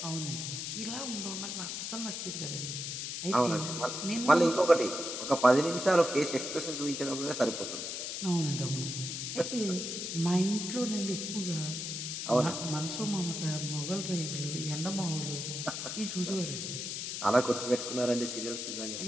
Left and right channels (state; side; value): noise; left; hiss, 4 dB below the sound